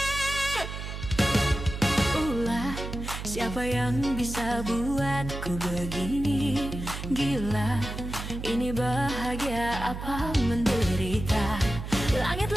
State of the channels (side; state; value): right; noise; hum, 7 dB below the sound